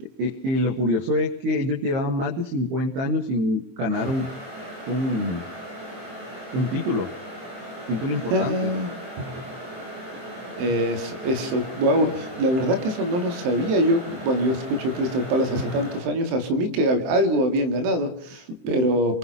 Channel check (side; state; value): left; late; 23 ms